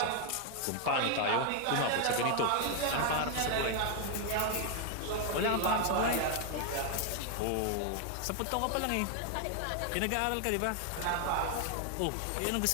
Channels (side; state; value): both; different; correlation 0.00